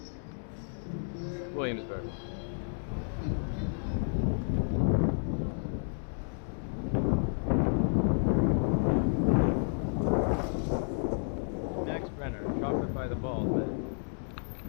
Williamsburg. Max Brenner, chocolate by the bald man.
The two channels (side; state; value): right; silent; digital silence